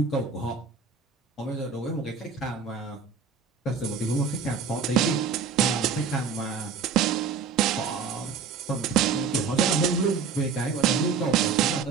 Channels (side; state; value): left; quieter; 5.7 dB